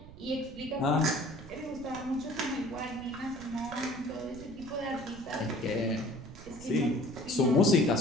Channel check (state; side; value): noise; right; rumble, 16 dB below the sound